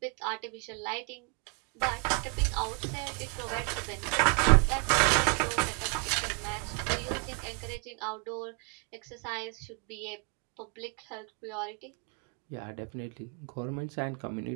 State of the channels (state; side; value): quieter; left; 34.3 dB